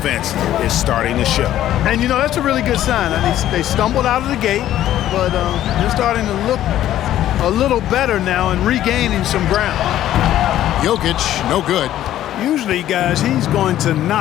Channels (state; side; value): quieter; right; 12.6 dB